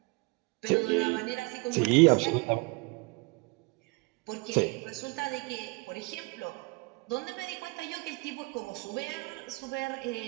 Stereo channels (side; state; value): left; quieter; 27.1 dB